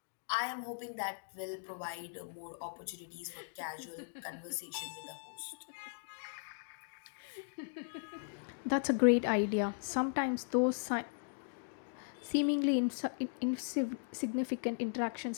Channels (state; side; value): silent; right; digital silence